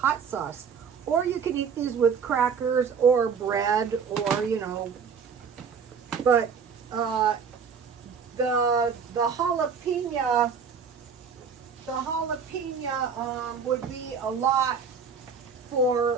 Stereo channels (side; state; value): left; quieter; 6.2 dB